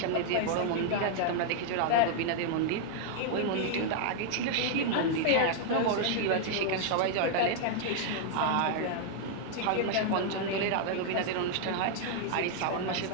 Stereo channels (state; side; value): different; both; correlation -0.01